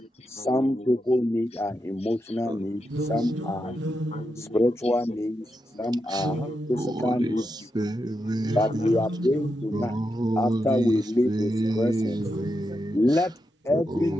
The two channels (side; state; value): both; normal; correlation 0.86